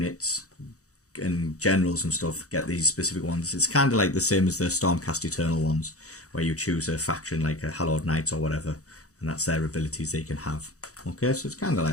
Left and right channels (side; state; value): right; late; 0.65 ms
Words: and generals and stuff get these specific ones. It's kind of like the same as the Stormcast Eternal ones, where you choose a faction like a Hallowed Knights or whatever, and that's their abilities they can have. Okay, so it's kind of